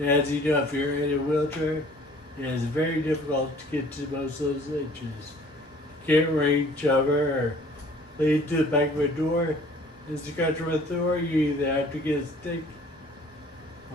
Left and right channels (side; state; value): both; normal; correlation 0.53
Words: as you know, if you're in a wheelchair, it is very difficult to get to most of those itches. You can't reach over or lead to the back of a door. As you go through a door, you either have to get a stick